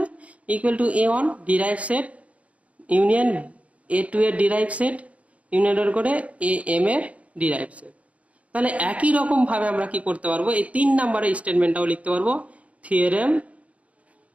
equal to A1 derive set union A2 এর ডিরাইভ সেট ইউনিয়ন ডট করে AM এর ডিরাইভ সেট। তাহলে একই রকম ভাবে আমরা কি করতে পারবো, এই 3 নম্বরের স্টেটমেন্টটাও লিখতে পারবো। থিওরেম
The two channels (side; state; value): left; late; 0.066 ms